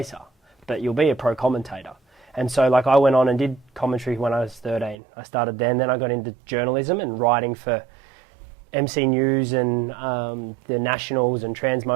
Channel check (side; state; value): left; drops out; at 5.0 s